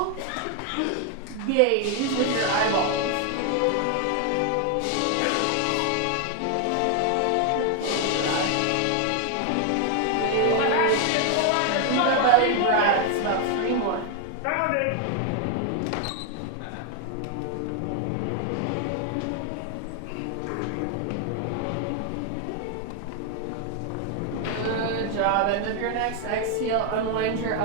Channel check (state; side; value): different; both; correlation 0.01